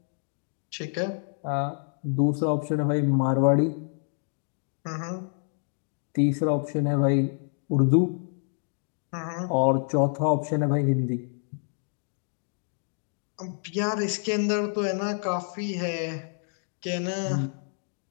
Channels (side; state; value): right; silent; 59 dB below the other